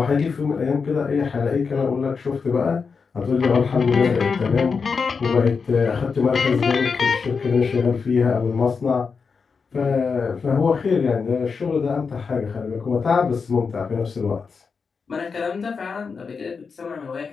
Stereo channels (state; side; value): quieter; right; 5.3 dB